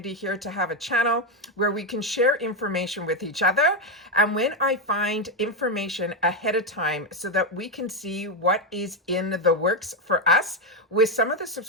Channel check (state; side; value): normal; both; correlation 0.07